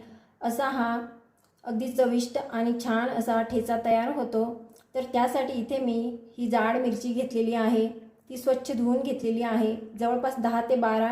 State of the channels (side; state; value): both; identical; correlation 1.00